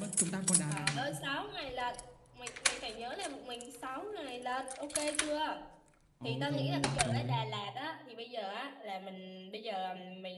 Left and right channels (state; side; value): identical; both; correlation 1.00